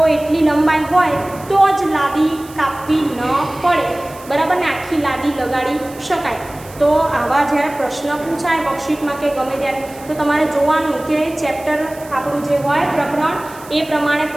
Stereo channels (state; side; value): noise; right; hiss, 20 dB below the sound